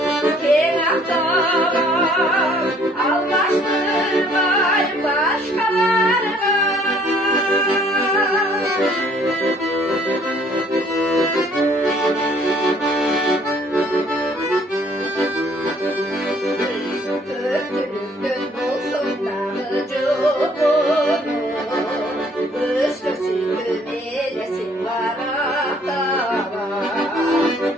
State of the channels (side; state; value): both; normal; correlation 0.60